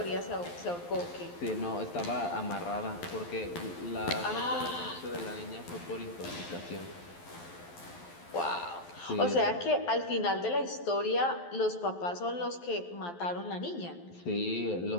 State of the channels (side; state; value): right; late; 11 ms